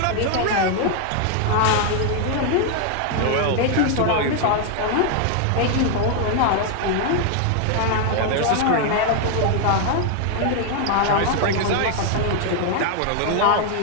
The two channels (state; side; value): different; both; correlation 0.00